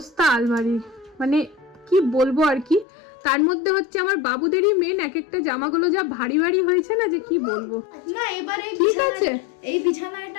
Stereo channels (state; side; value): drops out; right; at 2.9 s